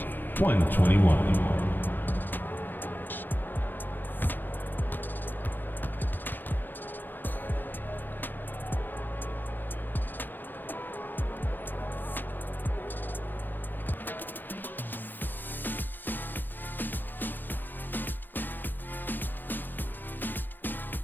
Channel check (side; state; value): right; late; 0.090 ms